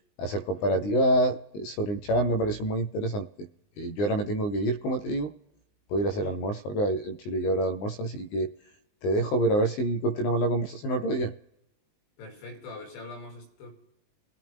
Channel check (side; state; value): right; late; 19 ms